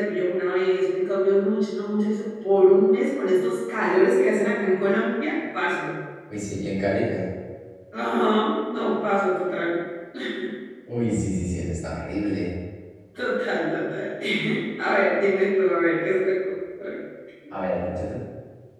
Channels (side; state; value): both; identical; correlation 1.00